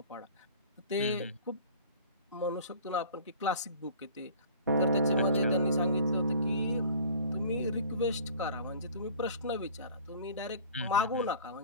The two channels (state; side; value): inverted; both; correlation -0.46